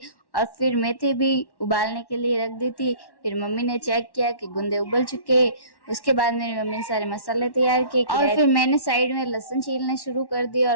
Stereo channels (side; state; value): right; late; 1.1 ms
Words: और फिर मेथी भी उबालने के लिए रख दी थी। फिर मम्मी ने चेक किया कि गुंदे उबल चुके। उसके बाद मेरी मम्मी ने सारे मसाले तैयार किए और फिर मैंने साइड में लहसुन छीलने शुरू कर दिया